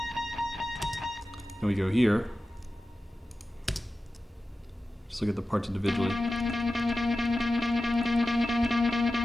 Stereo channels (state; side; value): normal; both; correlation 0.94